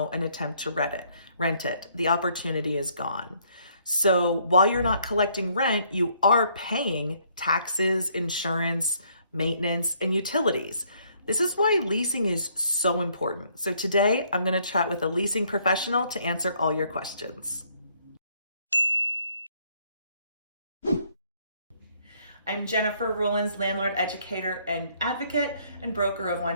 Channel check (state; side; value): inverted; both; correlation -0.67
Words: and attempt to rent it. The opportunity is gone. So while you're not collecting rent, you are paying taxes, insurance, maintenance, and utilities. This is why leasing is so important. So today I'm going to chat with a leasing professional to answer all your questions. I'm Jennifer Rollins, landlord, educator, and advocate, and broker of